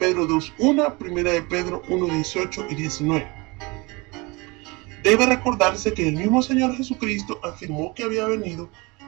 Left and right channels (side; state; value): left; quieter; 25.8 dB